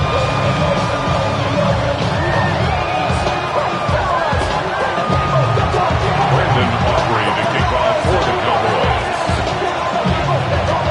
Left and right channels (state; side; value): identical; both; correlation 1.00